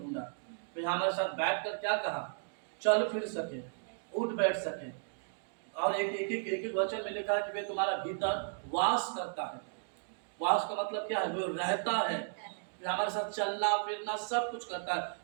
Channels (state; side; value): silent; left; digital silence